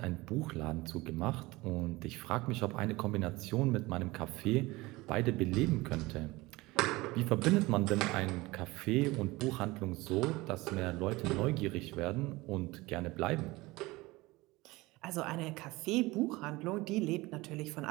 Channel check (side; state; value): left; quieter; 21.2 dB